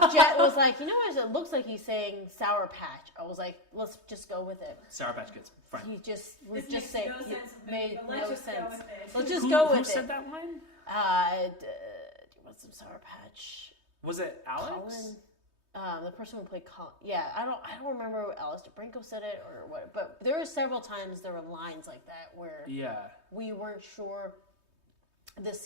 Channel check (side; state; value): left; late; 3.2 ms